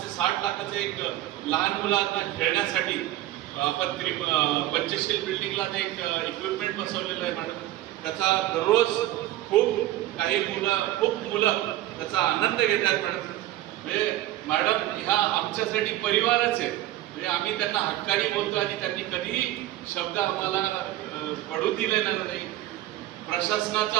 ते 60 लाखाचं एक लहान मुलांना खेळण्यासाठी आपण पंचशील बिल्डिंगला ते एक इक्विपमेंट बसवलेलं आहे मॅडम. त्याचा दररोज खूप मुलं त्याचा आनंद घेत आहेत मॅडम. म्हणजे मॅडम ह्या आमच्यासाठी परिवारच आहे. म्हणजे आम्ही त्यांना हक्काने बोलतो आणि त्यांनी कधीही शब्द आम्हाला पडू दिलेला नाही.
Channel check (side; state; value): left; quieter; 14.9 dB